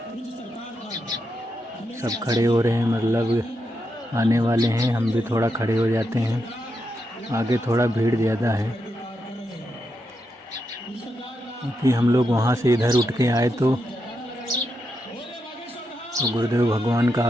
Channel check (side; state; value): both; normal; correlation 0.84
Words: सब खड़े हो रहे हैं, मतलब आने वाले हैं। हम भी थोड़ा खड़े हो जाते हैं, आगे थोड़ा भीड़ ज़्यादा है, क्योंकि हम लोग वहाँ से इधर उठ के आए तो गुरुदेव भगवान का